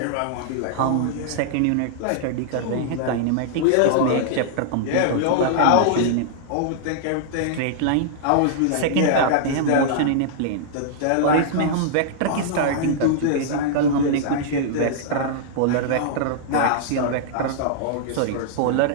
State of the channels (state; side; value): different; both; correlation -0.01